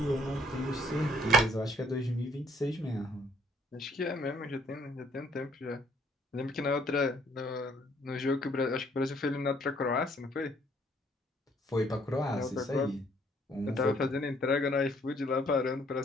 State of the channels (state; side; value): normal; both; correlation 0.63